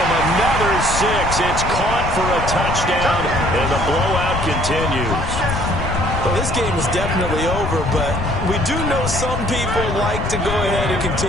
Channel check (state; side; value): noise; left; rumble, 4 dB below the sound